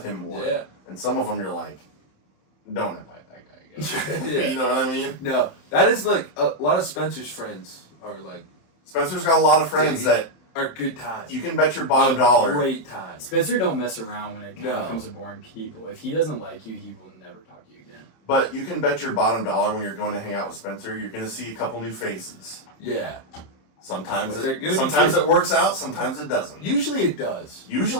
him more. Yeah. And some of them you're like, don't invite that guy again. Yeah. You know what I mean? No, that is like a lot of Spencer's friends are like Spencer's got a lot of friends that are good times. you can bet your bottom dollar. Great times. Spencer don't mess around when it No. comes to boring people. If he doesn't like you, he will never talk to you again. But you can bet your bottom dollar when you're going to hang out with Spencer, you're going to see a couple new faces. Yeah. Sometimes But they're gonna be sometimes good. it works out, sometimes it doesn't. Usually it does.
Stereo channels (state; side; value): late; right; 27 ms